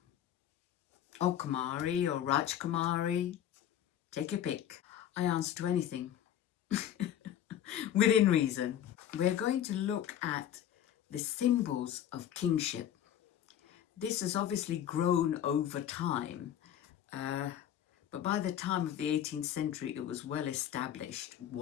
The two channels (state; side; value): quieter; right; 10.5 dB